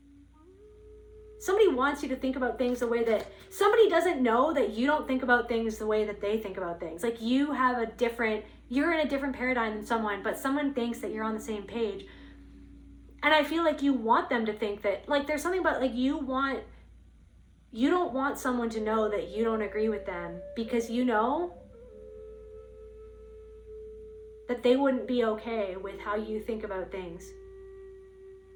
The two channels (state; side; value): identical; both; correlation 1.00